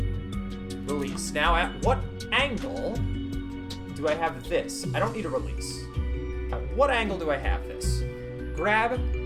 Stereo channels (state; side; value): identical; both; correlation 1.00